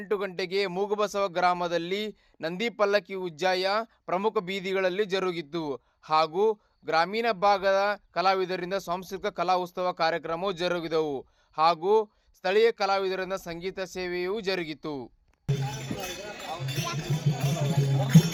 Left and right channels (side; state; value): both; identical; correlation 1.00